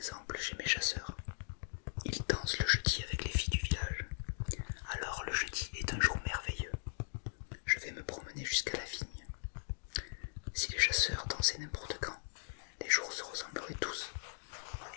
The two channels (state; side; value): silent; right; digital silence